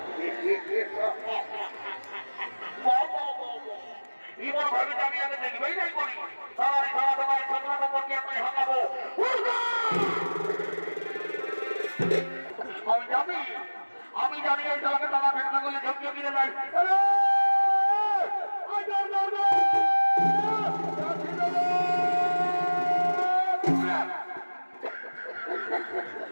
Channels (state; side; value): inverted; both; correlation -1.00